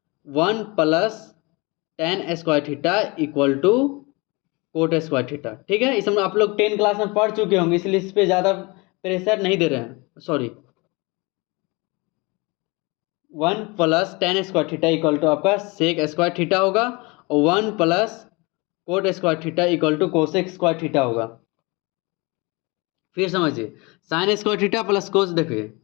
1 plus tan square theta equal to cot square theta, ठीक है। इसमें आप लोग 10 क्लास में पढ़ चुके होंगे, इसलिए इस पर ज़्यादा प्रेशर नहीं दे रहे हैं, sorry. 1 plus tan square theta equal to आपका सेक स्क्वायर थीटा होगा, और 1 plus cot square theta equal to cosec square theta होगा। फिर समझिए sine square theta plus cos, देखिए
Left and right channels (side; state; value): right; quieter; 26.5 dB